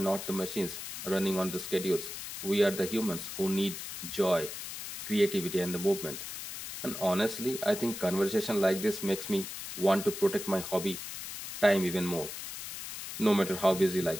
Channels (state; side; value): noise; left; hiss, 8 dB below the sound